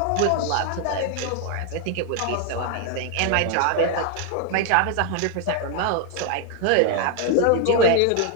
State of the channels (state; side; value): different; both; correlation 0.00